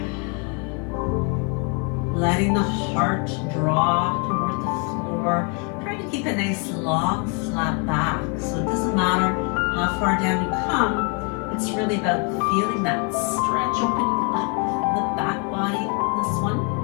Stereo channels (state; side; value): quieter; right; 36.2 dB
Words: letting the heart draw toward the floor. Try to keep a nice long flat back, so it doesn't matter how far down you come. It's really about feeling that stretch, opening up the back body in this one,